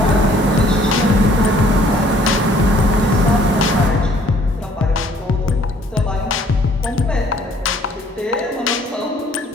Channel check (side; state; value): both; normal; correlation 0.60